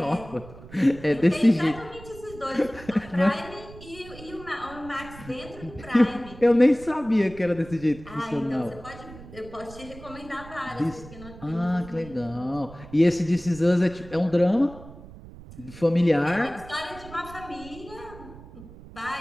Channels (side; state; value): right; noise; rumble, 17 dB below the sound